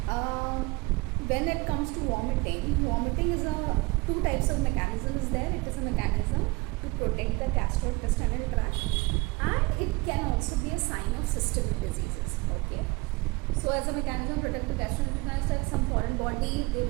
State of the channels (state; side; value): quieter; left; 24.6 dB